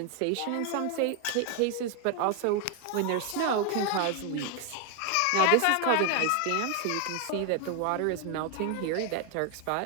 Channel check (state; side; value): different; both; correlation 0.00